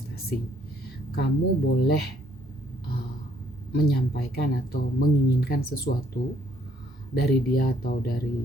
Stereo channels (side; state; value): both; normal; correlation 0.66